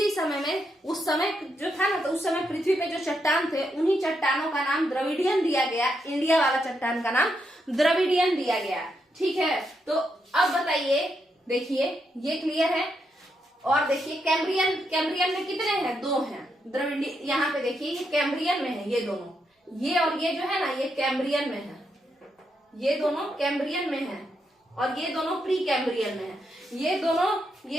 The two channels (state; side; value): normal; both; correlation 0.81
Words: समय में, उस समय जो था ना, तो उस समय पृथ्वी पे जो चट्टान थे उन्हीं चट्टानों का नाम द्रविडियन दिया गया। इंडिया वाला चट्टान का नाम द्रविडियन दिया गया। ठीक है, तो अब बताइए, देखिए ये क्लियर है। और देखिए कैम्ब्रियन, कैम्ब्रियन में कितने हैं? 2 हैं। द्रविडियन यहाँ पे देखिए ये कैम्ब्रियन में है, ये दोनों, ये और ये जो है ना, ये कैम्ब्रियन में है, ये दोनों कैम्ब्रियन में है और ये दोनों प्री कैम्ब्रियन में है। ये